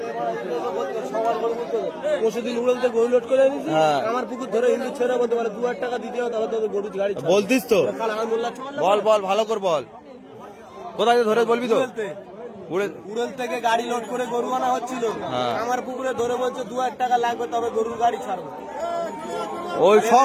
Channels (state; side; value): identical; both; correlation 1.00